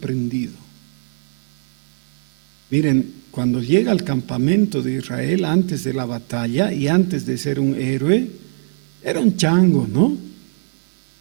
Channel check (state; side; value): silent; left; digital silence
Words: Miren, cuando llega al campamento de Israel antes de la batalla y antes de ser un héroe, era un chango, ¿no?